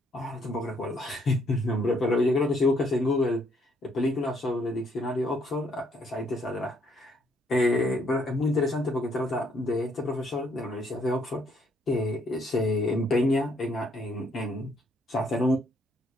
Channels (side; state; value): both; normal; correlation 0.69